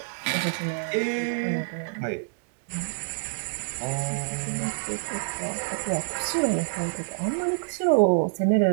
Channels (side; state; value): left; silent; 60 dB below the other